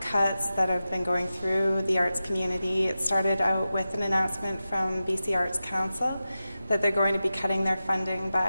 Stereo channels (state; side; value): inverted; both; correlation -0.93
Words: cuts that have been going through the arts community. It started out with an announcement from BC Arts Council that they're going to be cutting their funding